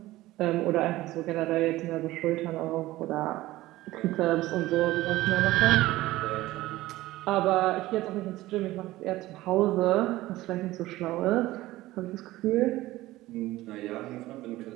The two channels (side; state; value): left; quieter; 17.2 dB